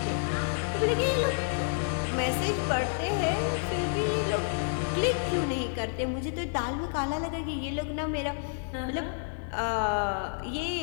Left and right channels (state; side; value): silent; right; digital silence